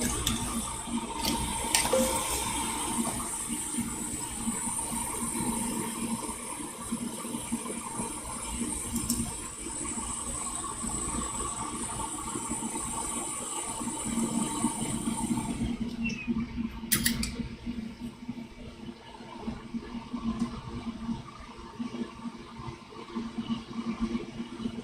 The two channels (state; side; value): identical; both; correlation 1.00